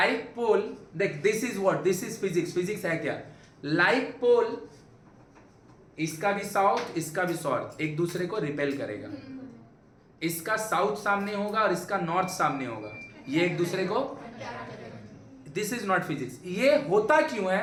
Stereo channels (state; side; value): identical; both; correlation 1.00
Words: पोल, देख this is what, this is physics. Physics है क्या? लाइक पोल, इसका भी साउथ इसका भी साउथ एक दूसरे को रिपेल करेगा। इसका साउथ सामने होगा और इसका नॉर्थ सामने होगा, ये एक दूसरे को, दिस इज नॉट फिजिक्स। ये होता क्यों